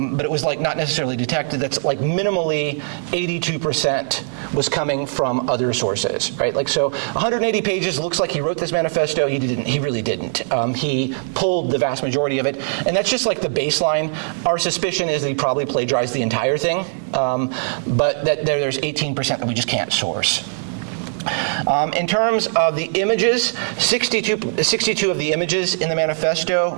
it was like not necessarily detected. That's like minimally 82% was coming from other sources, right? Like, so 180 pages, looks like he wrote this manifesto. He didn't. He really didn't. He pulled the vast majority of it, and that's just like the baseline. Our suspicion is that he probably plagiarized the entire thing, but that there's 18% that we just can't source. In terms of the images, 62 of the images in the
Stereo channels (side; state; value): left; silent; digital silence